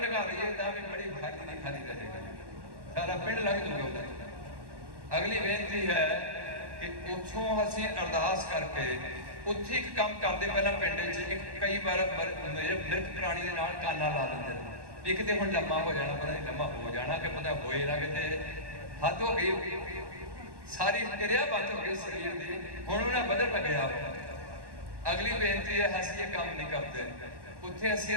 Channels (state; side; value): late; left; 1.1 ms